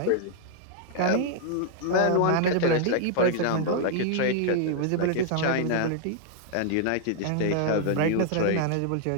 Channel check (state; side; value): different; both; correlation 0.00